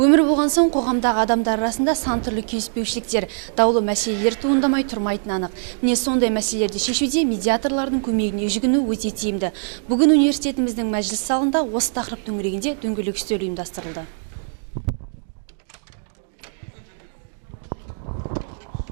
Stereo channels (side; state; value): left; silent; digital silence